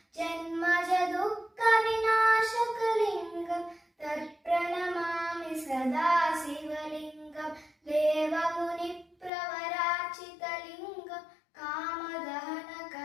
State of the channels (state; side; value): drops out; right; at 9.3 s